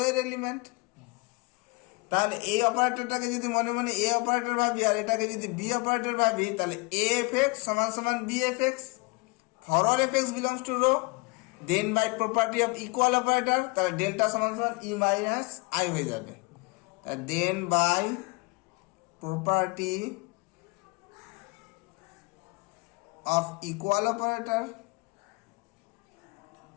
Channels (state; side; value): quieter; right; 25.7 dB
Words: এর এলিমেন্ট। তাহলে এই অপারেটরটাকে যদি মনে মনে এ অপারেটর ভাবি, আর এটাকে যদি বি অপারেটর ভাবি, তাহলে এ এফ এক্স সমান সমান B f x. For all f x belongs to rho, then by property of equal operator, তাহলে ডেল্টা সমান সমান ই মাইনাস আই হয়ে যাবে। Then by property of equal operator,